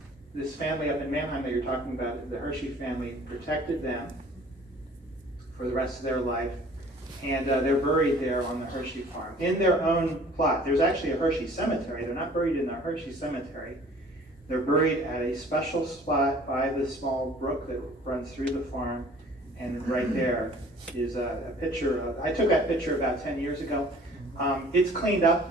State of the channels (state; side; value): normal; both; correlation 0.51